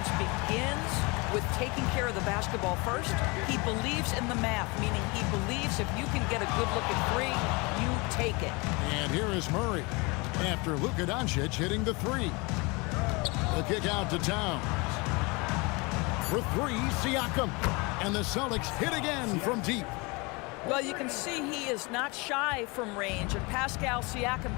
begins with taking care of the basketball first. He believes in the math, meaning he believes if you can get a good look at three, you take it. And here is Murray after Luka Doncic hitting the three. The kick out to Towns. For three, Siakam. And the Celtics hit again from deep. Well, you can see he is not shy from range, and Pascal Siakam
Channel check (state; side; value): quieter; right; 27.2 dB